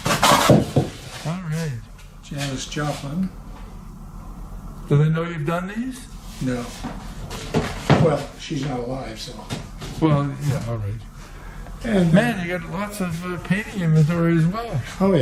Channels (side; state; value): both; identical; correlation 1.00